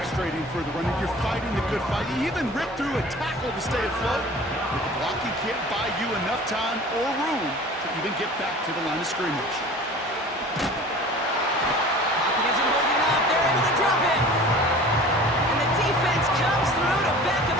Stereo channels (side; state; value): both; normal; correlation 0.43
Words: for the runner. You're fighting the good fight. You even rip through a tackle to stay afloat. But the blocking can't buy you enough time or room to even get back to the line of scrimmage. Pocket isn't holding up. They're able to drop it. And the defense comes through to back him